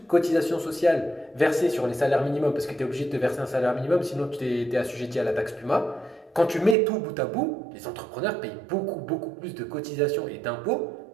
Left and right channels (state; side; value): drops out; left; at 6.8 s